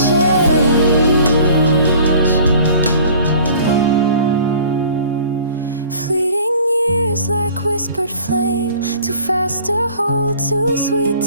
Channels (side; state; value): both; inverted; correlation -0.49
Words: tears like whispered flame, too fast to hold, too sweet